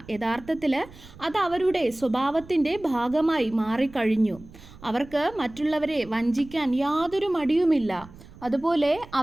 യഥാർത്ഥത്തിൽ അത് അവരുടെ സ്വഭാവത്തിൻ്റെ ഭാഗമായി മാറിക്കഴിഞ്ഞു. അവർക്ക് മറ്റുള്ളവരെ വഞ്ചിക്കാൻ യാതൊരു മടിയുമില്ല. അതുപോലെ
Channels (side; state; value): right; noise; rumble, 20 dB below the sound